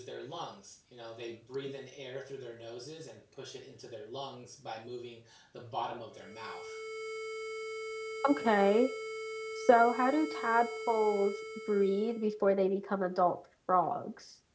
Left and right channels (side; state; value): both; identical; correlation 1.00